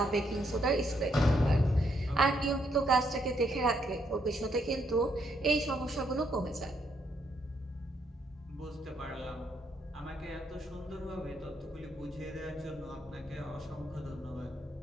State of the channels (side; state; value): both; normal; correlation 0.74